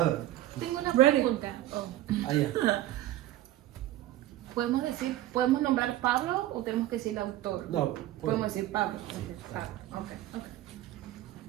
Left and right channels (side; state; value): left; quieter; 14.5 dB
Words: Tengo una pregunta. Allá. ¿Podemos nombrar Pablo o tenemos que decir el autor? No, Podemos decir Pablo. Ok.